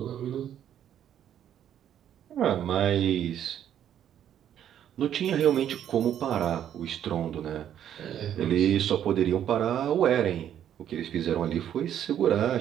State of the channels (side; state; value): left; quieter; 10.2 dB